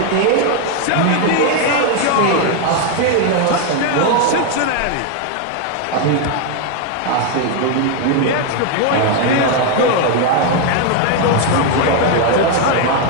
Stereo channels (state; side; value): different; both; correlation 0.01